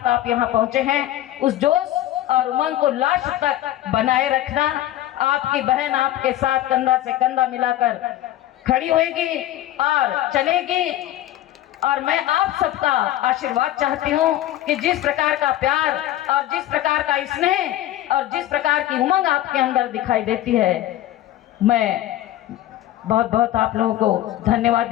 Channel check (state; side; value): quieter; right; 13.9 dB